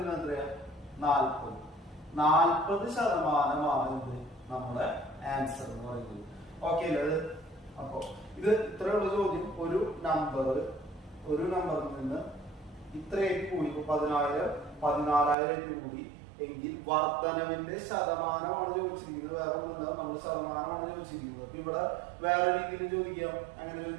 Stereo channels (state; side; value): drops out; left; at 15.4 s